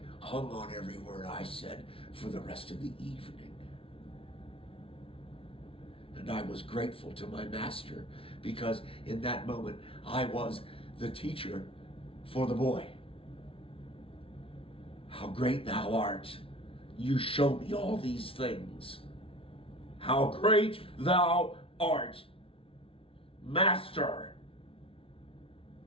hung on every word I said for the rest of the evening. And I was grateful to my master because in that moment I was the teacher for the boy. How great thou art. You show me all these things. How great thou art, Master.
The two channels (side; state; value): right; late; 0.26 ms